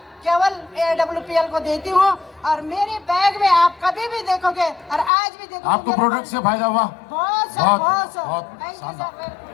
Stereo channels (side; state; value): right; drops out; at 5.1 s